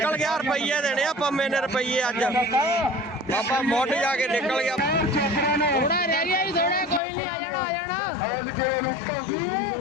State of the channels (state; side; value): drops out; right; at 7.0 s